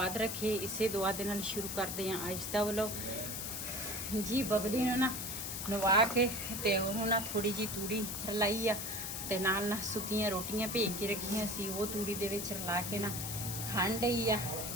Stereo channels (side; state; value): left; noise; hiss, 4 dB below the sound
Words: ਰੱਖੇ। ਇਸੇ ਦੁਆ ਦੇ ਨਾਲ ਸ਼ੁਰੂ ਕਰਦੇ ਹਾਂ ਅੱਜ ਦਾ ਵਲੋਗ ਜੀ। ਬਬਲੀ ਨੂੰ ਨਾ ਨਵਾ ਕੇ ਤੇ ਉਹਨੂੰ ਨਾ ਥੋੜੀ ਜੀ ਤੂੜੀ ਰਲਾਈ ਆ ਤੇ ਨਾਲ ਨਾ ਸੁੱਕੀਆਂ ਰੋਟੀਆਂ ਭੇਜ ਕੇ ਰੱਖੀਆਂ ਸੀ, ਉਹ ਤੂੜੀ ਦੇ ਵਿੱਚ ਰਲਾ ਕੇ ਨਾ ਖਾਣ ਡਈ ਆ।